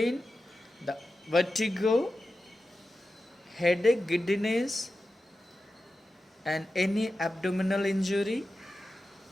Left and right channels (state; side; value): normal; both; correlation 0.92